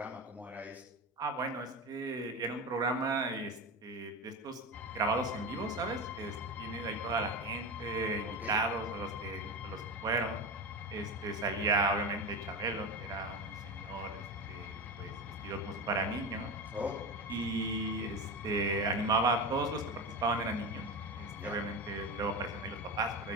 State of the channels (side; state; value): both; normal; correlation 0.21